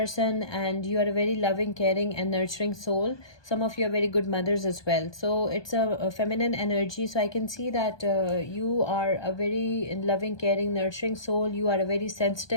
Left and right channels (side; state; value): right; late; 1.2 ms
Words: and you are a very loving, caring and nurturing soul. Some of you are very good mothers as well. So it's a feminine energy. So I can see that you are a very loving, caring, nurturing soul. You are a very